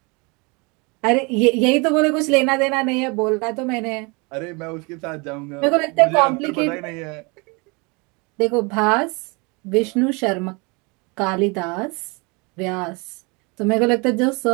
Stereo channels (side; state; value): left; quieter; 29.3 dB